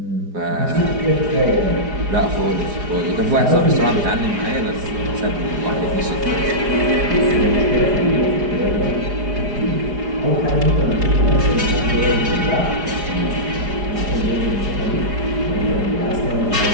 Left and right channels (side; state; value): left; late; 4.9 ms